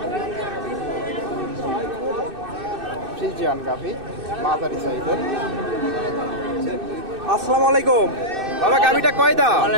ফ্রিজিয়ান গাভী মাঝারি সাইজের। আসসালামু আলাইকুম বাবা, গাভীটা কয় দাঁত?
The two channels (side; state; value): left; late; 2.6 ms